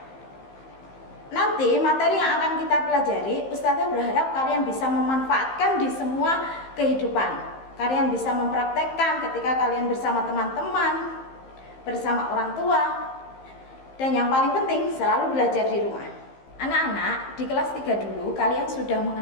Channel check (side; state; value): right; late; 15 ms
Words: Nanti materi yang akan kita pelajari, Ustazah berharap kalian bisa memanfaatkan di semua kehidupan. Kalian bisa mempraktekkan ketika kalian bersama teman-teman, bersama orang tua, dan yang paling penting selalu belajar di rumah. Anak-anak, di kelas 3 dulu kalian sudah